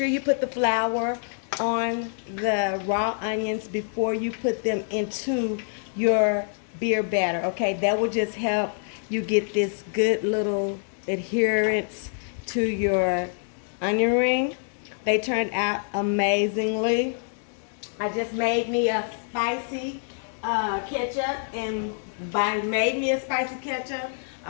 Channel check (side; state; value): right; silent; digital silence